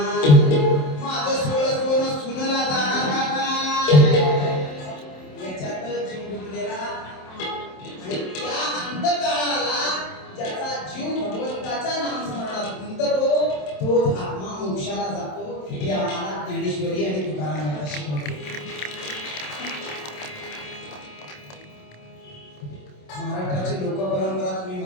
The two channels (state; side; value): late; right; 27 ms